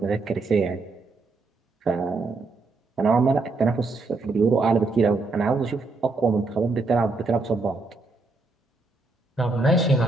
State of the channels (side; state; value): left; quieter; 3.6 dB